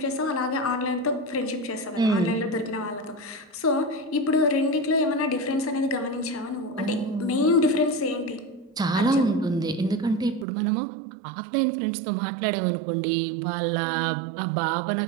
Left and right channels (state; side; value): drops out; left; at 10.5 s